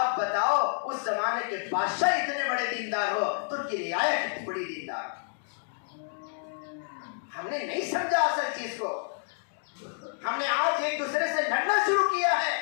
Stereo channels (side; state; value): right; silent; digital silence